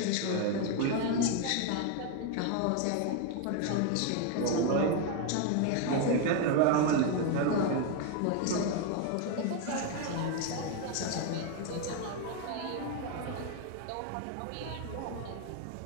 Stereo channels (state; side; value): different; both; correlation 0.01